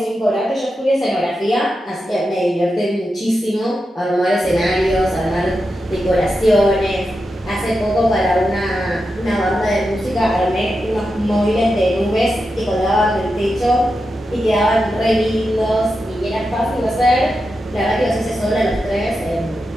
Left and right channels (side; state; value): both; normal; correlation 0.89